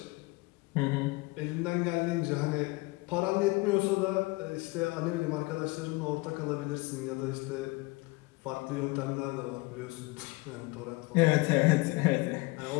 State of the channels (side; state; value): right; quieter; 24.3 dB